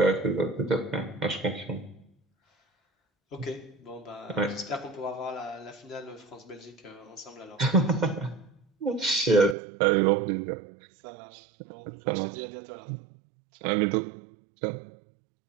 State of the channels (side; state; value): left; drops out; at 9.6 s